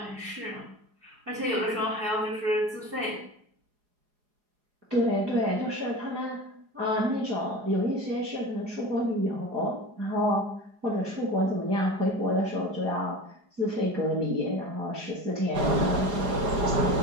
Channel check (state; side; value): late; left; 4.8 ms